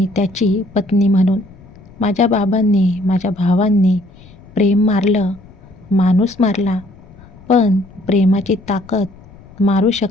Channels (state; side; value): noise; left; rumble, 23 dB below the sound